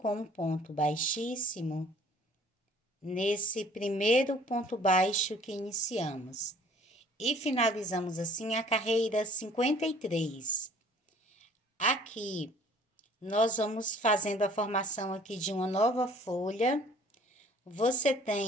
um ponto baixíssimo nesse primeiro ponto baixo que iniciamos. E finalizamos assim a carreira 53. Aqui, nós vamos fazendo a formação aqui de uma nova folha. Você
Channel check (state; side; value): normal; both; correlation 0.54